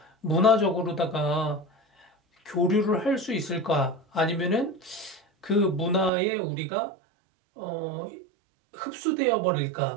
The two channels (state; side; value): drops out; left; at 6.1 s